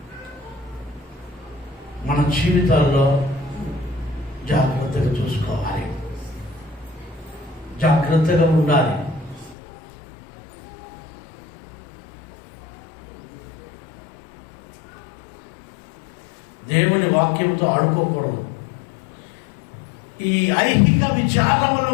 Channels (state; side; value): drops out; right; at 9.6 s